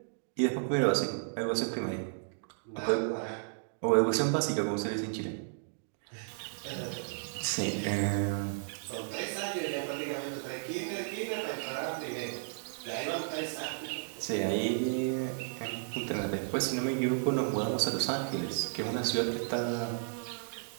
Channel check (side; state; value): left; silent; digital silence